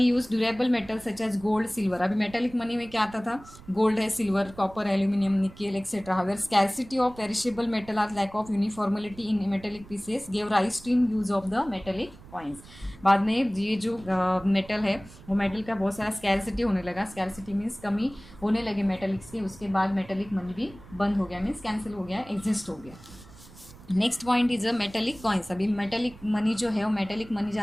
use durable metal such as gold, silver. अभी मेटेलिक मनी में क्या आता था, गोल्ड है, silver, copper, aluminium, nickel etcetera. However scarcity of perishable metal or lack of uniformity in metallic pieces gave rise to in use of the metallic coins. बाद में ये जो मेटल है वो मेटल का बहुत सारा स्कैरसिटी होने लगा. स्कैरसिटी मीन्स कमी होने लगे मेटेलिक्स के, उसके बाद मेटेलिक मनी भी बंद हो गया, मीन्स कैंसिल हो गया, एग्जिस्ट हो गया. Next point is a metallic coins. अभी मेटेलिक मनी जो है वो मेटेलिक मनी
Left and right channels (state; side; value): noise; right; rumble, 20 dB below the sound